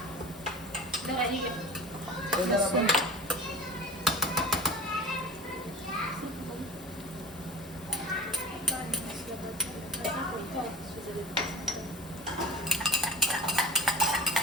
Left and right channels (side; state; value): both; normal; correlation 0.35